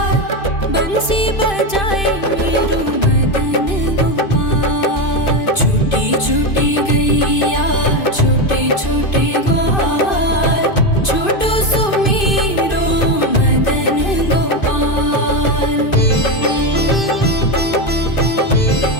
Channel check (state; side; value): late; right; 2.5 ms